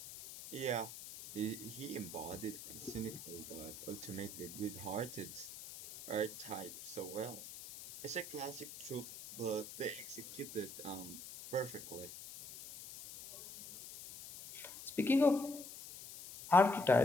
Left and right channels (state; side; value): noise; left; hiss, 12 dB below the sound